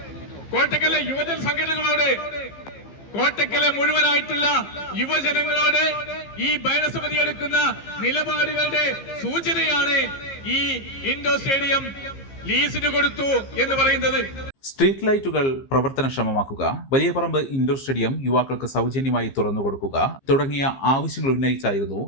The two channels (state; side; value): late; right; 15 ms